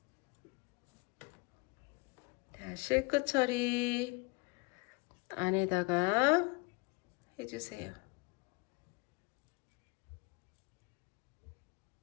자, 실끝 처리 안에다가 해주세요.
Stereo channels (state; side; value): quieter; right; 28.6 dB